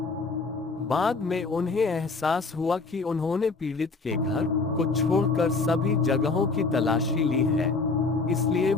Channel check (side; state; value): right; quieter; 4.0 dB